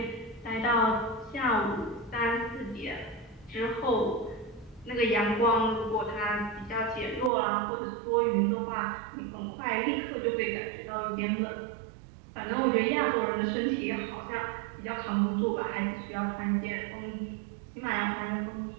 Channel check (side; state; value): left; drops out; at 7.3 s